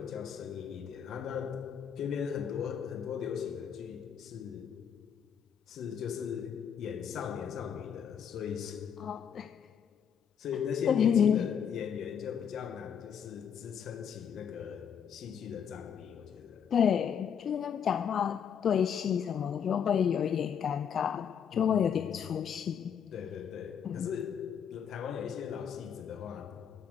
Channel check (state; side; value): quieter; right; 7.8 dB